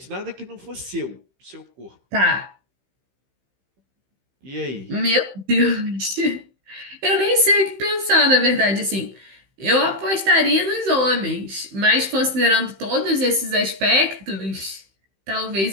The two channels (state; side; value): late; left; 15 ms